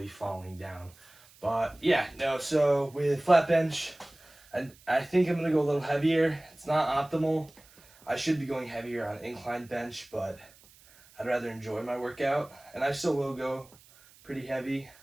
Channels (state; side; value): noise; right; hiss, 26 dB below the sound